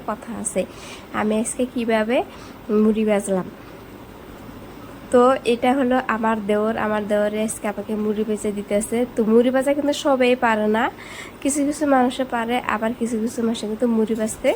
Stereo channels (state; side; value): identical; both; correlation 1.00